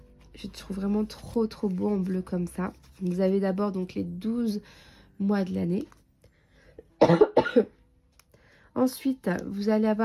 Je trouve vraiment trop beau en bleu comme ça. Vous avez d'abord donc les 12 mois de l'année. Ensuite, vous allez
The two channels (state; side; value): identical; both; correlation 1.00